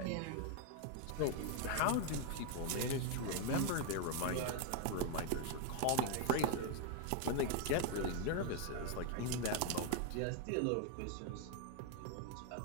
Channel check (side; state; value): both; different; correlation 0.01